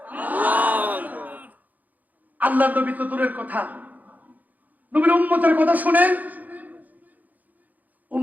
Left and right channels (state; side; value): late; left; 0.081 ms